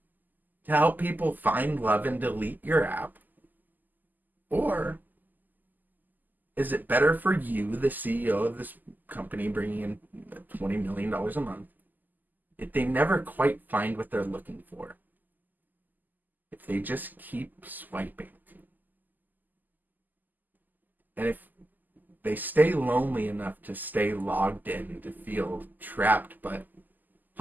to help people find love and delete your app? Or is it better for you, the CEO of this company, bringing in $20 million a month, if they never quite find what they're looking for? If they just keep swiping? And if they stay lonely enough to stay logged in, to feel trapped, but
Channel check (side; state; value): left; late; 0.085 ms